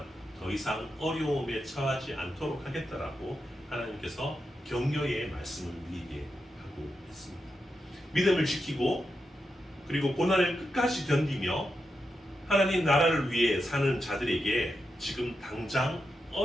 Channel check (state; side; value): normal; both; correlation 0.87